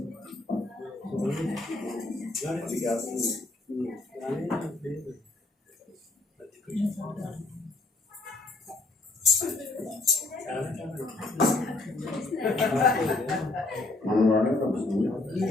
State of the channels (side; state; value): right; quieter; 3.1 dB